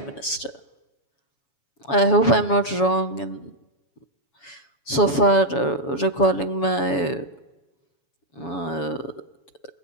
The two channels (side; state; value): right; late; 7.1 ms